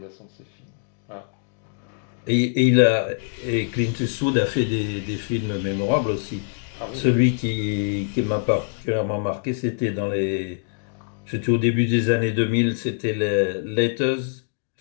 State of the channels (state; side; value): silent; right; digital silence